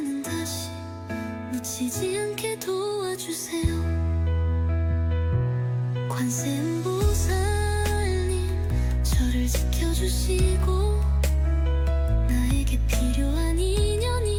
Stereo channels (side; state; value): both; identical; correlation 1.00